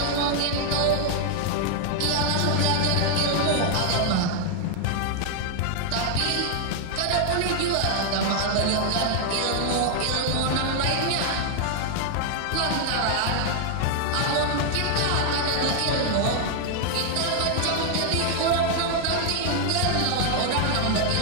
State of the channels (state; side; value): different; both; correlation 0.00